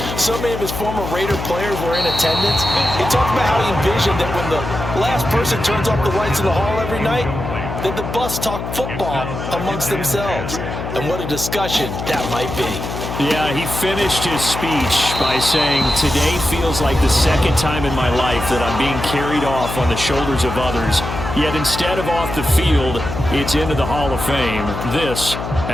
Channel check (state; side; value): noise; left; hum, 6 dB below the sound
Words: So many of his former Raider players were in attendance. He talked about how he envisioned that when the last person turns off the lights in the hall every night, that the bus talk football amongst themselves. And what a discussion that might be. Yeah, he finished his speech by saying, today feels like the second time in my life that I'm being carried off on the shoulders of others. Yet instead of off the field, it's into the Hall of Fame. This